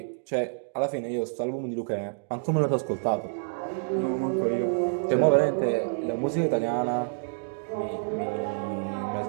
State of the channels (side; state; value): left; silent; digital silence